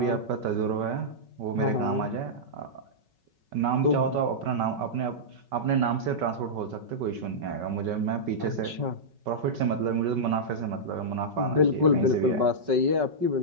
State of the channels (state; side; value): late; left; 5.3 ms